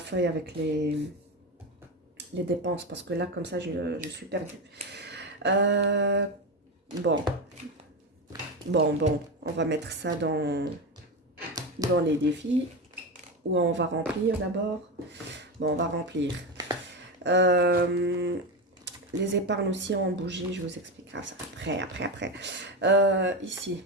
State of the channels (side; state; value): both; normal; correlation 0.17